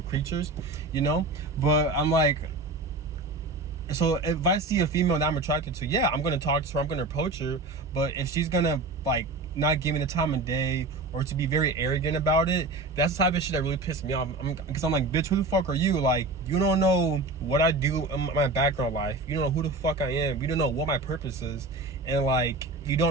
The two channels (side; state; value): left; quieter; 3.1 dB